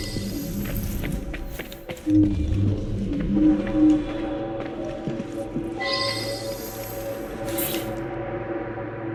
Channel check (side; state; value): both; identical; correlation 1.00